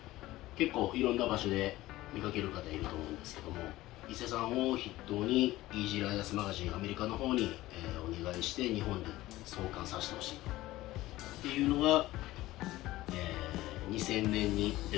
結構いろんな場所で見かける方いると思うんですけども、伊勢さんを筆頭にイージーライダースマガジンアメリカの方に、お願いして日本で創刊させてほしいっていうのが、2000年に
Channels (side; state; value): right; quieter; 17.1 dB